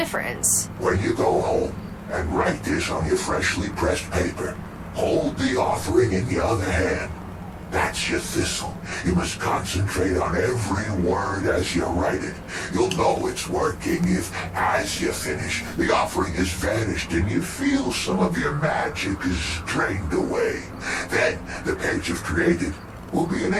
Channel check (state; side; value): identical; both; correlation 1.00